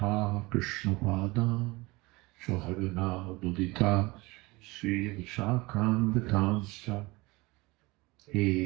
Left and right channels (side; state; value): left; quieter; 22.9 dB